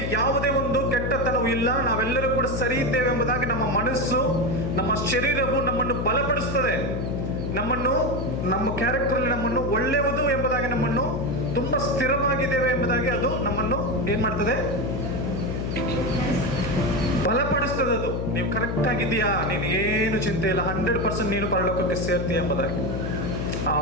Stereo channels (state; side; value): noise; left; hum, 3 dB below the sound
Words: ಯಾವುದೇ ಒಂದು ಕೆಟ್ಟತನವೂ ಇಲ್ಲ, ನಾವೆಲ್ಲರೂ ಕೂಡ ಸರಿ ಇದ್ದೇವೆ ಎಂಬುದಾಗಿ ನಮ್ಮ ಮನಸ್ಸು, ನಮ್ಮ ಶರೀರವು ನಮ್ಮನ್ನು ಬಲಪಡಿಸ್ತದೆ. ನಮ್ಮ ಕ್ಯಾರೆಕ್ಟರ್ ನಮ್ಮನ್ನು ಒಳ್ಳೆಯದು ಎಂಬುದಾಗಿ, ನಮ್ಮನ್ನು ತುಂಬಾ ಸ್ಥಿರವಾಗಿದ್ದೇವೆ ಎಂಬುದಾಗಿ ಅದು ನಮ್ಮನ್ನು ಏನ್ ಮಾಡ್ತದೆ? ಬಲಪಡಿಸ್ತದೆ. ಅದು ನೀವು ಕರೆಕ್ಟ್ ಆಗಿದೆಯಾ, ನೀನು ಏನು ಚಿಂತೆ ಇಲ್ಲ, 100% ನೀನು ಪರಲೋಕಕ್ಕೆ ಸೇರ್ತೀಯ ಎಂಬುದಾಗಿ.